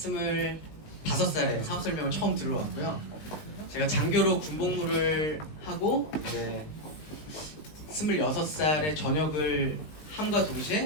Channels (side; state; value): right; late; 19 ms